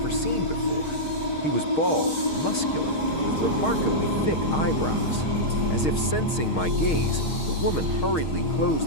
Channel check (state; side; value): late; right; 6.4 ms